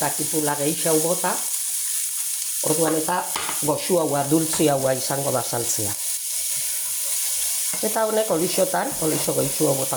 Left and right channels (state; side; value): identical; both; correlation 1.00